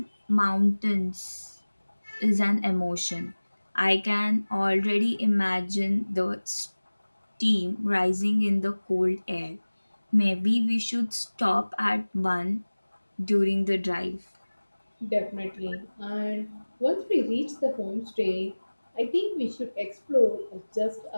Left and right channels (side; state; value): both; inverted; correlation -1.00